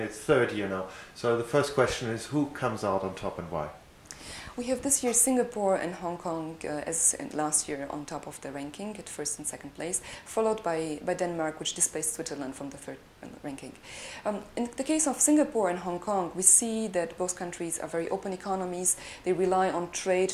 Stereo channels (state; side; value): identical; both; correlation 1.00